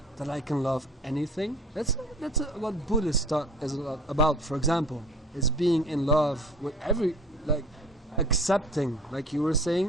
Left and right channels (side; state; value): both; normal; correlation 0.45